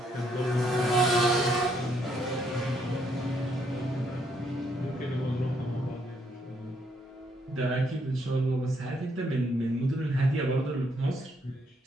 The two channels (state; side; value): normal; both; correlation 0.72